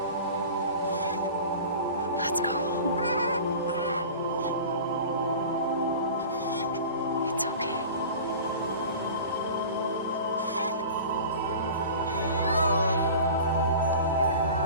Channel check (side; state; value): both; inverted; correlation -0.38